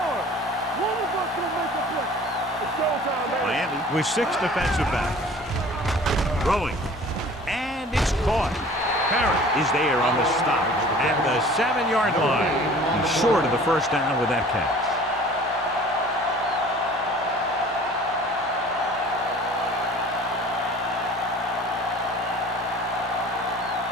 One of us will make a play. It's showtime, man. Miami with 6 defensive backs. Throwing. And it's caught. Parrott is there on the stop at the 7-yard line. He's short of the first down with that catch.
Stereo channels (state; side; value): normal; both; correlation 0.47